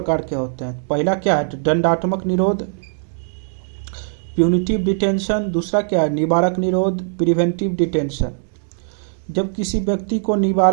के होते हैं। पहला क्या है? दंडात्मक निरोध, प्यूनिटिव डिटेंशन। दूसरा क्या है? निवारक निरोध, प्रिवेंटिव डिटेंशन। जब किसी व्यक्ति को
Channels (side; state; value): left; silent; digital silence